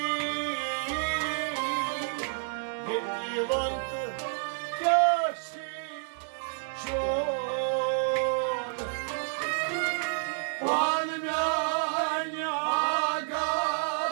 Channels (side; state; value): left; silent; digital silence